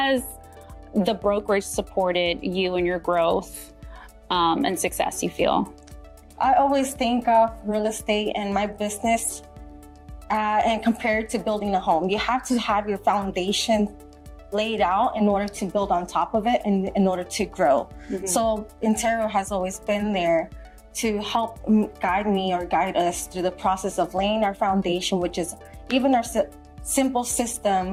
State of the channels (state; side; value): identical; both; correlation 1.00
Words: the brokerage supported you in your growth and success, you feel? I always think of real estate and my business and compare it to building a home. You have to have your foundation laid out in order to build on top of it and in order to grow. So Intero has always been there to help guide me or guide us through the process of laying our foundation, which is even our simple